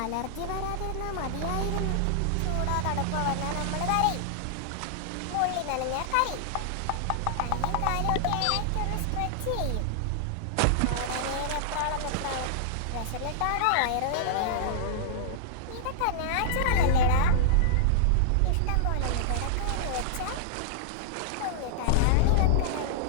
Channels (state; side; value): different; both; correlation -0.01